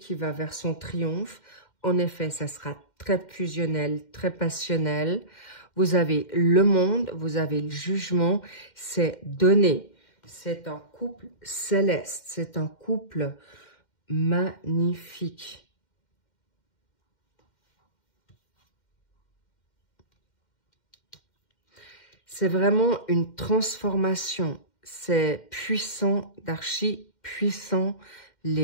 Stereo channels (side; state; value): right; late; 2.1 ms